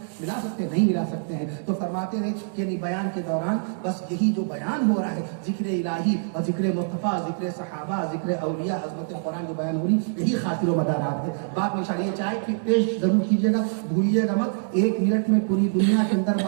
ملا سکتے ہیں؟ نہیں ملا سکتے ہیں۔ تو فرماتے ہیں کہ بیان کے دوران بس یہی جو بیان ہو رہا ہے، ذکر الہی اور ذکر مصطفیٰ، ذکر صحابہ، ذکر اولیاء، عظمت قرآن جو بیان ہو رہی، یہی خاطر و مدارات ہے۔ بعد میں شاید یہ چائے کی پیش ضرور کیجیے گا، بھولیے گا مت۔ 1 منٹ میں پوری دنیا کے اندر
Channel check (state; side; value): silent; left; digital silence